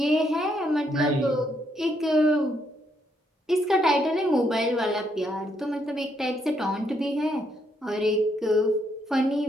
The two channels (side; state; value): both; normal; correlation 0.75